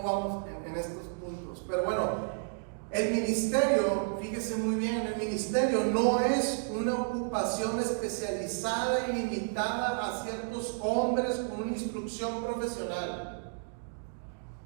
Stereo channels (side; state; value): left; silent; digital silence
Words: vamos en estos puntos. Pero bueno, el ministerio, fíjese muy bien, el ministerio no es una ocupación especializada y limitada a ciertos hombres con una instrucción profesional.